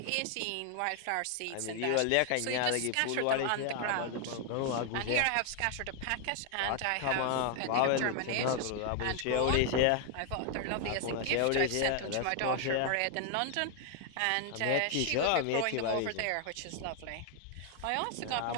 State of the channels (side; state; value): both; different; correlation 0.00